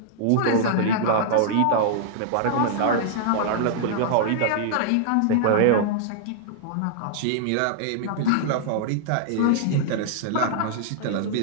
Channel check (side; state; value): both; different; correlation -0.01